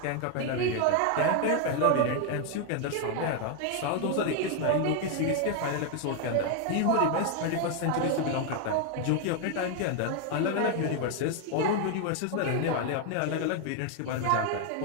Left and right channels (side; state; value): both; different; correlation 0.01